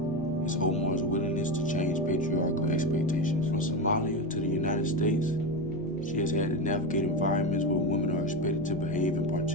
is Omar's willingness to change patriarchal expectations. From Somalia to the United States, she has had to navigate environments where women are expected to behave in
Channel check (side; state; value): left; noise; rumble, 19 dB below the sound